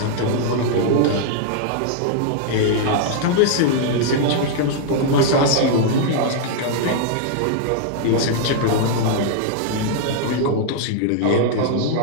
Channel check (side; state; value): both; different; correlation -0.01